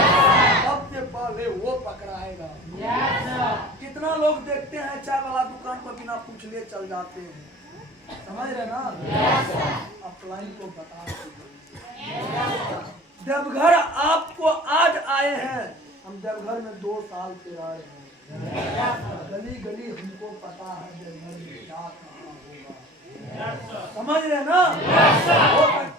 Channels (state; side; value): normal; both; correlation 0.42